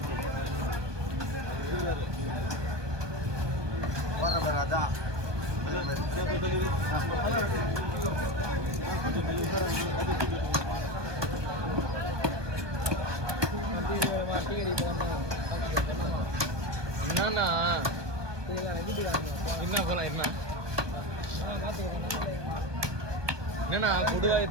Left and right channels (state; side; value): late; left; 1.2 ms